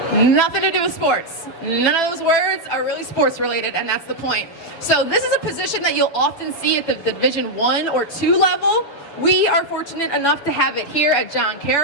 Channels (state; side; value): late; right; 7.0 ms